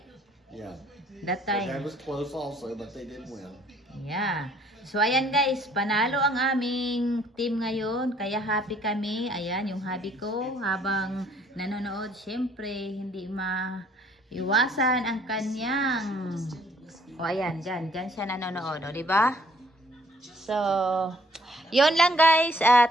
Yeah. That That time. was close also, but they did win. Yeah. So, ayan guys, panalo ang aming team ngayon. Kaya happy kami. Ayan, yung hobby ko habang nanonood. Siyempre, hindi maiwasan ang kanyang... O, ayan, dyan siya nanonood. O, diba? So, yun lang guys.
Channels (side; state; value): both; normal; correlation 0.61